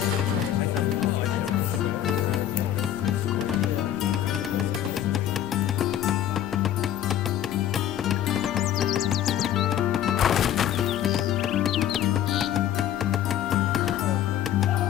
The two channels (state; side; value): quieter; right; 11.0 dB